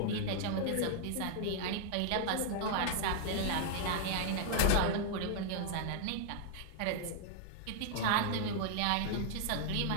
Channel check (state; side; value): different; both; correlation 0.00